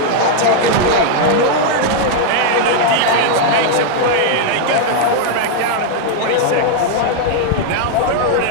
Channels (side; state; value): both; different; correlation 0.00